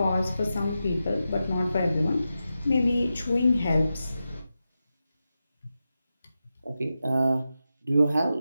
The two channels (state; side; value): inverted; both; correlation -0.91